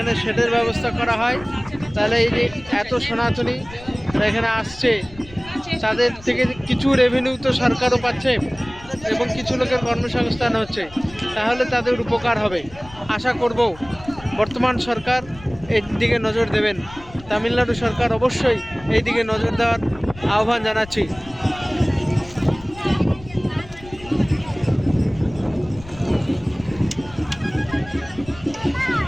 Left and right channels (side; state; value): left; noise; rumble, 19 dB below the sound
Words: শেডের ব্যবস্থা করা হয় তাহলে এই যে এত সনাতনী এখানে আসছে তাদের থেকে কিছু রেভিনিউ তো সরকারও পাচ্ছে এবং কিছু লোকের কর্মসংস্থান হচ্ছে, তাহলে তাদের উপকার হবে। আশা করব বর্তমান সরকার এই দিকে নজর দেবেন। তামিলনাড়ু সরকার অবশ্যই এই দিকে নজর দেওয়ার আহ্বান জানাচ্ছি।